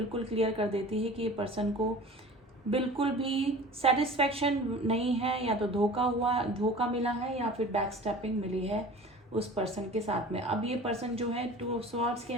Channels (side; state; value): both; normal; correlation 0.41